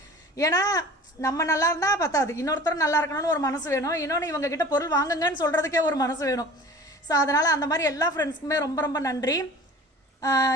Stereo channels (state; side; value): normal; both; correlation 0.43